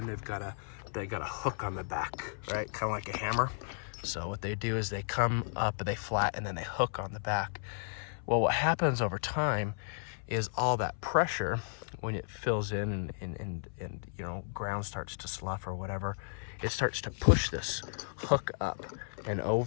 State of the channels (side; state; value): right; silent; 55 dB below the other